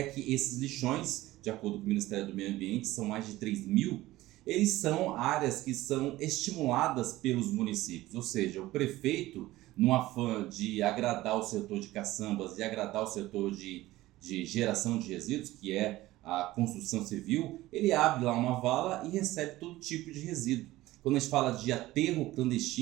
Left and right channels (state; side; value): quieter; left; 17.1 dB